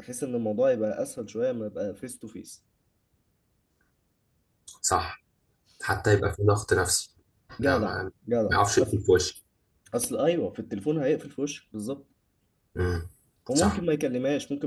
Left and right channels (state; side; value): identical; both; correlation 1.00